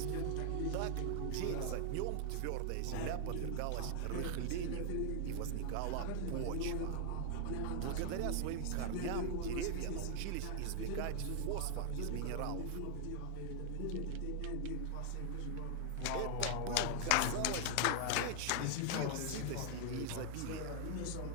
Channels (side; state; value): both; different; correlation 0.00